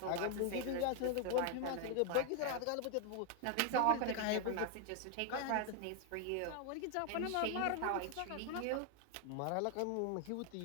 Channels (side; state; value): both; different; correlation 0.00